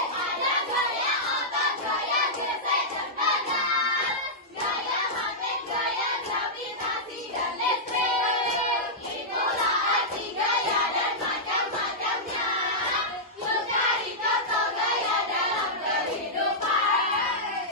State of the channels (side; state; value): both; normal; correlation -0.11